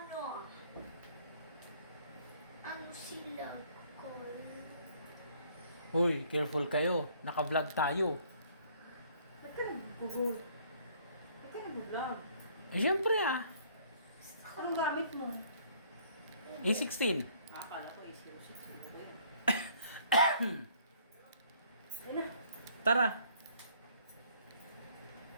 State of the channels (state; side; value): inverted; both; correlation -0.60